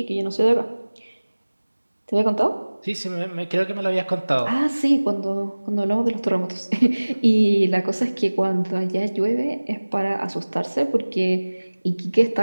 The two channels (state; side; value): inverted; both; correlation -1.00